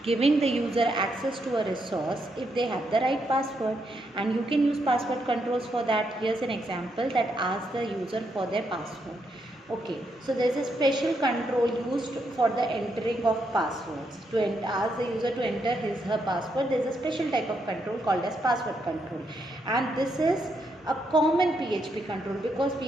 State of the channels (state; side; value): normal; both; correlation 0.79